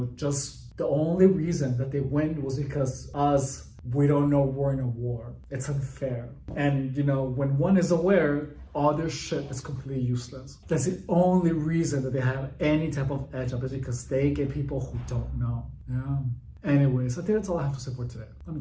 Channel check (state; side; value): identical; both; correlation 1.00